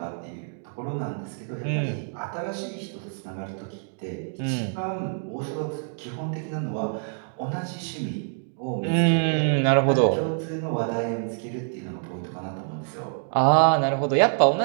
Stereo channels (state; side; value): silent; left; 60 dB below the other